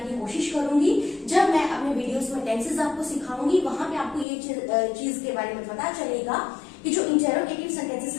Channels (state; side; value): drops out; right; at 4.2 s